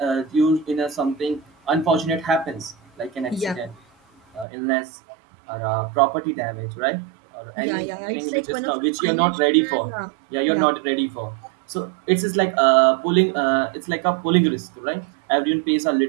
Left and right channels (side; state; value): left; drops out; at 4.5 s